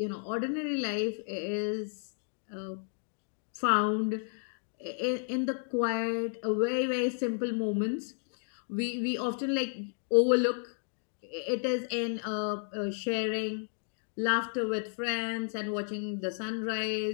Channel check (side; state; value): right; silent; 56 dB below the other